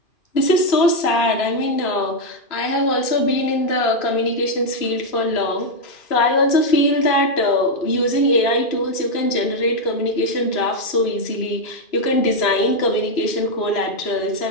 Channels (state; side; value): late; right; 3.0 ms